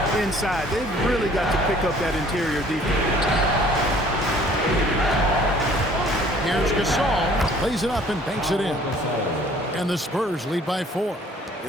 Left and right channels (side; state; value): both; normal; correlation 0.55